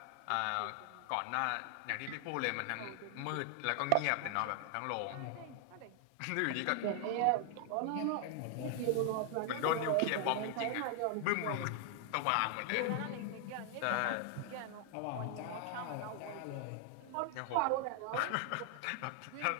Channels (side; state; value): both; different; correlation 0.00